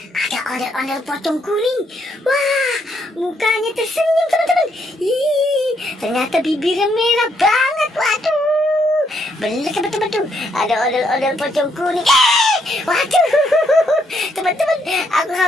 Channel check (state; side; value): normal; both; correlation 0.74